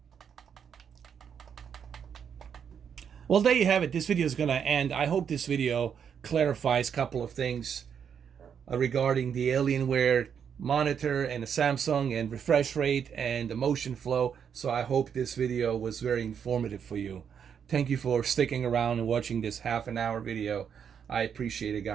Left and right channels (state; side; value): quieter; left; 7.6 dB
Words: well, there you have it. This video is going to end. I hope this video clarifies a couple of things regarding the Alienware monitor and the Samsung and refresh rate and the motion flow. So I hope this video was very informative for you. Thank you for sticking around and watching this half-an-hour video. I appreciate it,